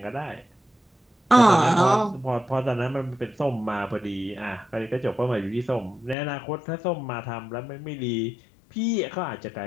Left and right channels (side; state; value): right; drops out; at 6.2 s